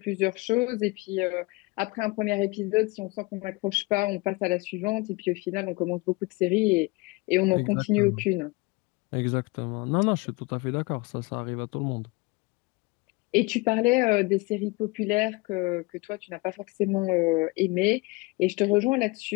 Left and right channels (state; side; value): quieter; right; 25.1 dB